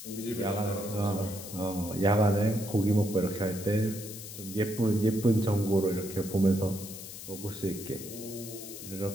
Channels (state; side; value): noise; left; hiss, 11 dB below the sound